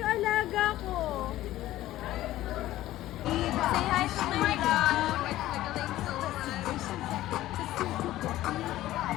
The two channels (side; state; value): right; quieter; 15.0 dB